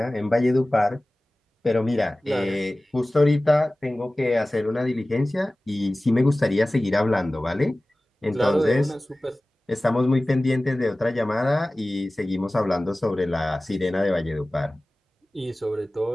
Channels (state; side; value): normal; both; correlation 0.97